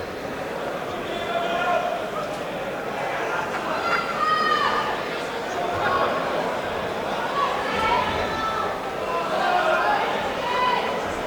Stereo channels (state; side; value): identical; both; correlation 1.00